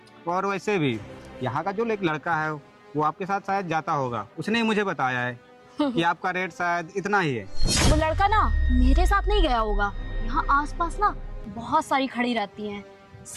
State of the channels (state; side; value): identical; both; correlation 1.00